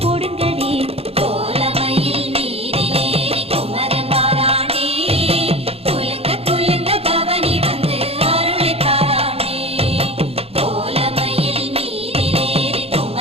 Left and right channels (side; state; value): left; late; 0.29 ms